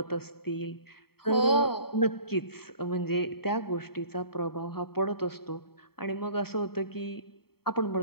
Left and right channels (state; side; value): late; right; 0.95 ms